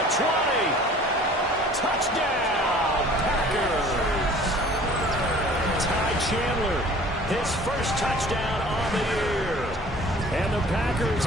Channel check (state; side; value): normal; both; correlation 0.48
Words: 20. Touchdown, Packers. Ty Chandler, his first touchdown on the year. And the Packers